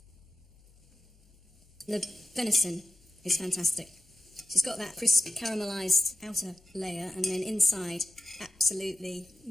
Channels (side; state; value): both; normal; correlation 0.94